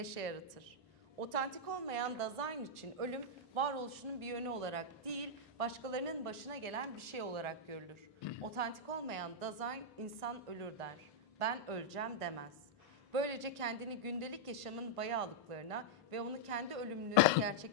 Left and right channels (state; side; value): normal; both; correlation -0.06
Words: yaratır. Otantik olmayan Dasein için ölüm varoluşunun bir yönü olarak değil, başkalarının başına gelen bir şey olarak görülür. Otantik olmayan Dasein insan ölür der. Ben öleceğim demez. Böylece kendini gündelik yaşamın bayağılıklarına ve onu kendi ölümlülüğü